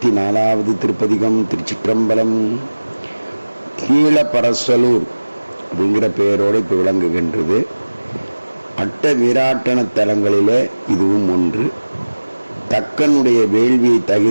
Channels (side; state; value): both; inverted; correlation -1.00